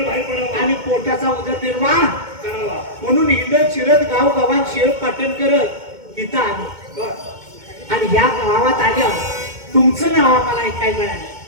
बाहेर पडावं आणि पोटाचा उदरनिर्वाह करावा. म्हणून हिंडत शिरत गाव गावात शेळ पाटण करत इथं आलो. बरं. आणि या गावात आल्यावर तुमचं नाव आम्हाला ऐकायला मिळालं.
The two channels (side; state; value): left; late; 2.2 ms